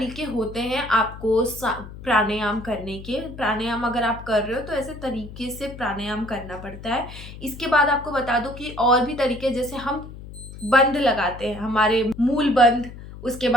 होते हैं आपको प्राणायाम करने के। प्राणायाम अगर आप कर रहे हो तो ऐसे तरीके से प्राणायाम करना पड़ता है। इसके बाद आपको बता दूं कि और भी तरीके, जैसे हम बंद लगाते हैं, हमारे मूल बंद, उसके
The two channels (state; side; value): noise; left; hum, 14 dB below the sound